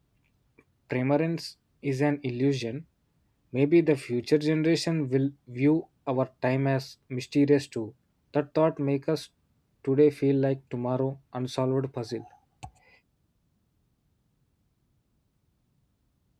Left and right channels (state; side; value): identical; both; correlation 1.00